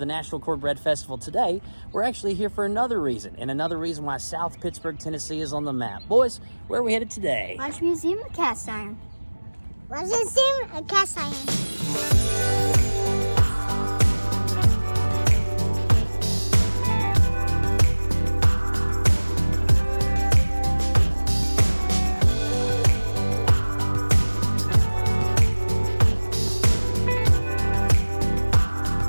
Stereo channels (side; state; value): both; inverted; correlation -1.00